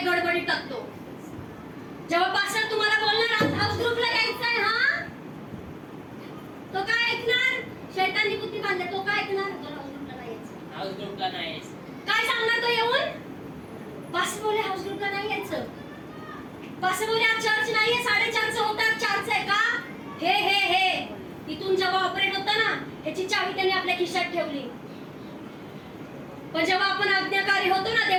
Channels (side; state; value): both; identical; correlation 1.00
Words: गडबडी टाकतो. जेव्हा पास्टर तुम्हाला बोलणार आज हाऊस ग्रुपला यायचंय, हा तो काय ऐकणार? शैतानी बुद्धी बांधले, तो काय ऐकणार? तो हाऊस ग्रुपला नाही यायचं. हाऊस ग्रुपला नाही. काय सांगणार तो येऊन? पास्टर बोले हाऊस ग्रुपला नाही यायचं. पास्टर बोले आज चर्च नाहीये, 4:30 होतात, 4 आहे का? हे इथून जेव्हा ऑपरेट होतं ना, ह्याची चावी त्याने आपल्या खिशात ठेवली. पण जेव्हा आपण आज्ञाकारी होतो ना,